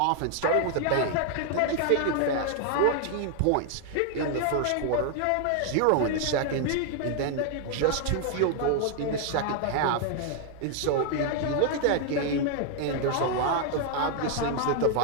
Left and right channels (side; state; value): both; different; correlation 0.00